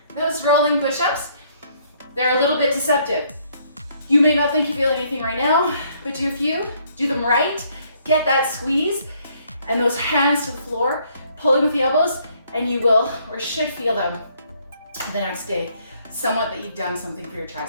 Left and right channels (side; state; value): both; inverted; correlation -0.66